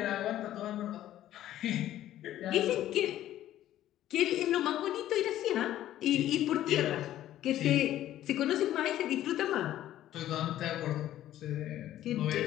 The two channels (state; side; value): quieter; right; 13.0 dB